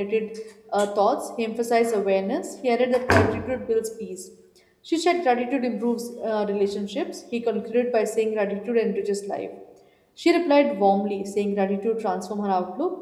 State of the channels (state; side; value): identical; both; correlation 1.00